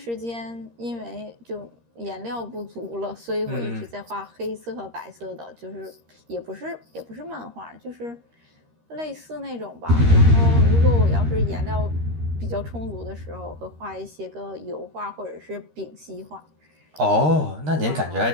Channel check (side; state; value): left; late; 13 ms